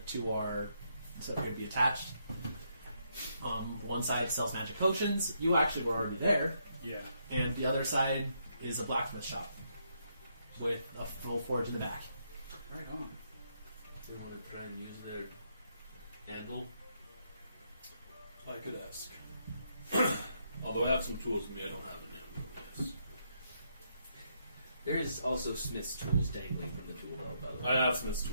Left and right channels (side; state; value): both; inverted; correlation -0.76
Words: two are so appear to be attached. One side sells magic potions. You actually were already there. Yeah. And the other side is a blacksmith shop with a full forge in the back. Right on. They want to try and use their anvil. I could ask. Although I have some tools with me, I don't have an ammo. There is also smith's tools dangling from the tool belt, by the way. I have Smith's